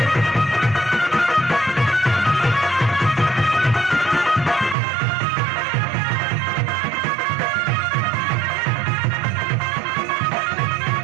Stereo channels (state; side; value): drops out; left; at 4.8 s